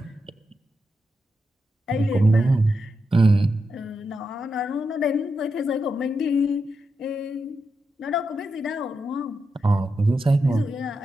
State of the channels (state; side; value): normal; both; correlation 0.86